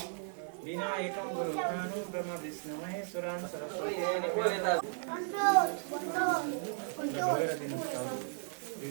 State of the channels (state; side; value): silent; left; 54 dB below the other